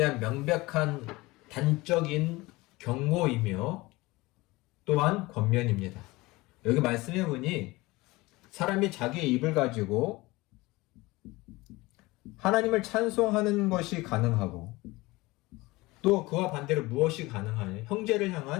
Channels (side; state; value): right; quieter; 21.4 dB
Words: 명백한 단적인 경고이며 또한 권면입니다. 여기 말씀해 보니 사람이 자기의 입을 가지고 하나님을 찬송하는 것이 가능하고 또 그와 반대로 무엇이 가능하냐? 형제를